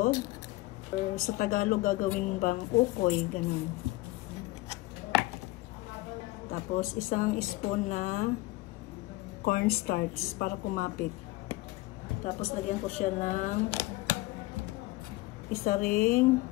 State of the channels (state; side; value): quieter; right; 19.6 dB